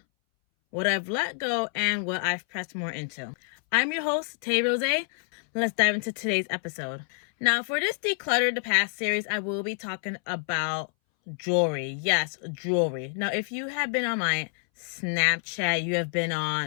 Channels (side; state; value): right; silent; 60 dB below the other